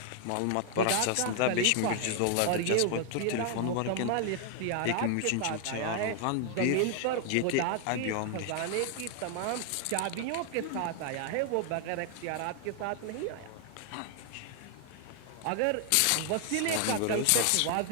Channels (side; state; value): both; different; correlation 0.00